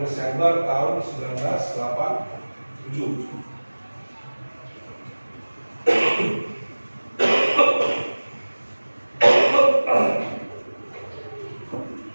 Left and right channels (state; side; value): inverted; both; correlation -1.00